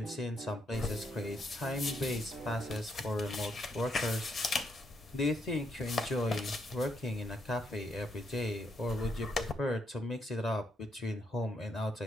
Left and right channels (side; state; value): both; normal; correlation 0.77